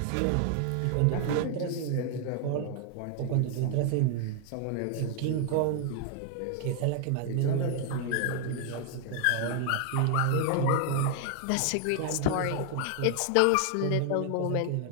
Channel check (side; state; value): both; different; correlation 0.00